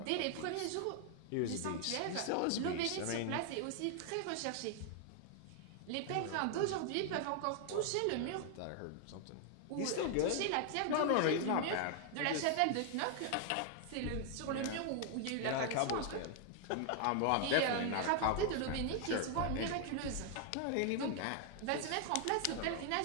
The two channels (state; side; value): different; both; correlation 0.00